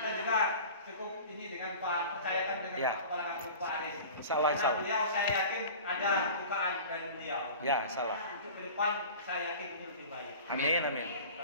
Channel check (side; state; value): both; inverted; correlation -0.38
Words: juga cukup ini dengan Pak, percayakan dengan Pak Kepala Kampung Pak Aris. Insyaallah. Beliau saya yakin ada bukaan dari beliau. Ya, salah. Untuk ke depan saya yakin itu lebih baik. Amin.